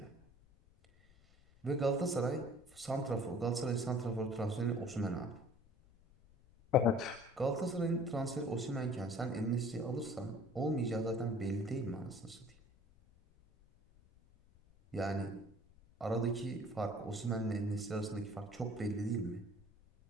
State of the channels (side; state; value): left; noise; rumble, 27 dB below the sound